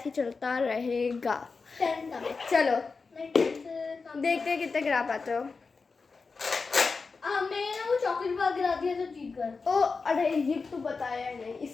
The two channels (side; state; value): right; quieter; 4.5 dB